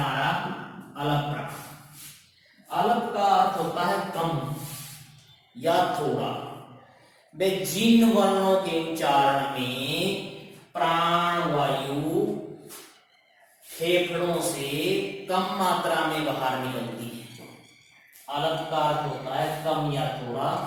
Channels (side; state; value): both; identical; correlation 1.00